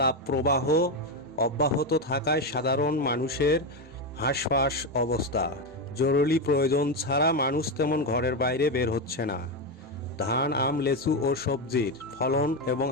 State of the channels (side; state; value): both; normal; correlation 0.10